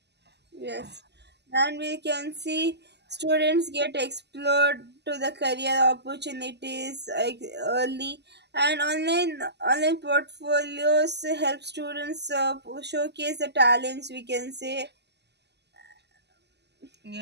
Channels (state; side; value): late; left; 0.50 ms